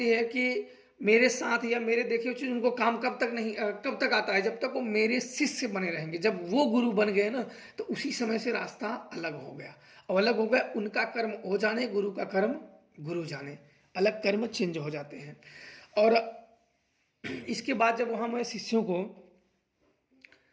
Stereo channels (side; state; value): both; identical; correlation 1.00